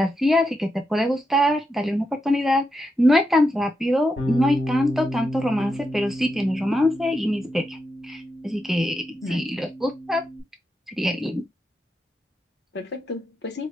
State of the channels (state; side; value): normal; both; correlation 0.85